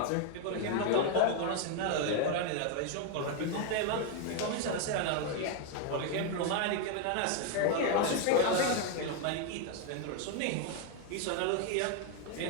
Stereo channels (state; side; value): different; both; correlation 0.01